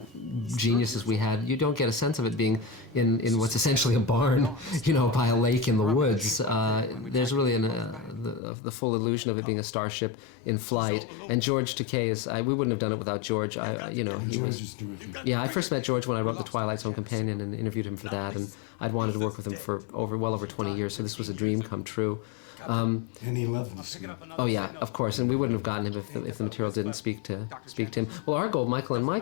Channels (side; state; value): right; drops out; at 8.4 s